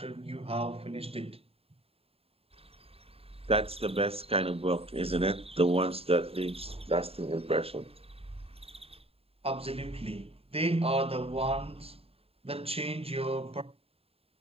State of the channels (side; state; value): left; late; 0.28 ms